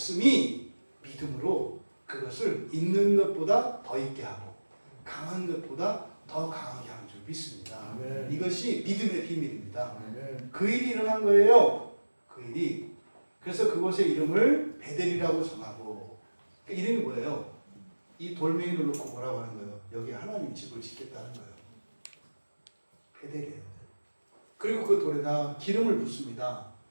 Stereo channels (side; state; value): both; inverted; correlation -1.00